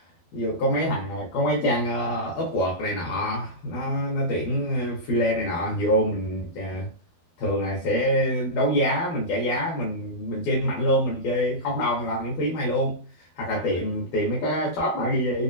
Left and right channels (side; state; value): right; late; 12 ms